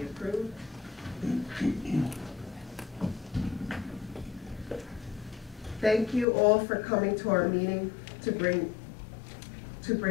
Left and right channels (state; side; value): drops out; right; at 6.2 s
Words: approved. Thank you all for coming to our meeting to bring